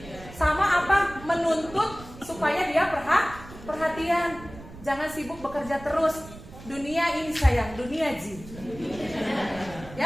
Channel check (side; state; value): right; noise; rumble, 16 dB below the sound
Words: Sama apa? Menuntut supaya dia perhatian. Jangan sibuk bekerja terus. Dunia ini sayang, dunia jin.